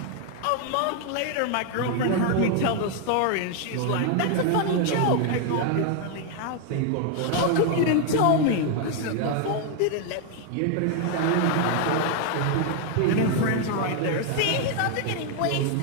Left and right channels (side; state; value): both; different; correlation 0.01